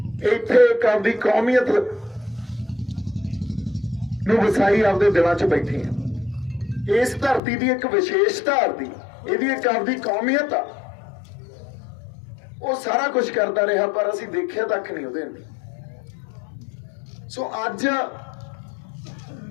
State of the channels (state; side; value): drops out; right; at 7.4 s